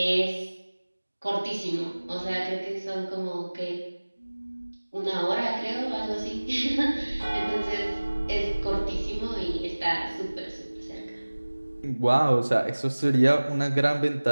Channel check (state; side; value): inverted; both; correlation -1.00